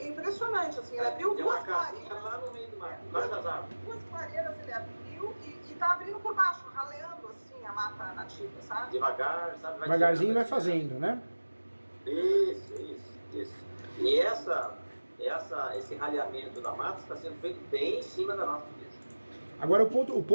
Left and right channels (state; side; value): inverted; both; correlation -1.00